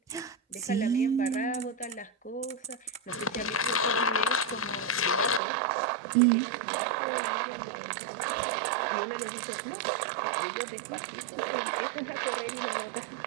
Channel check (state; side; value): drops out; left; at 5.4 s